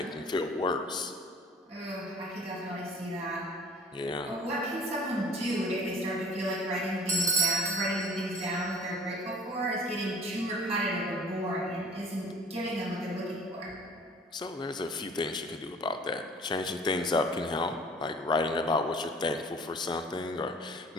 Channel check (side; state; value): both; normal; correlation 0.48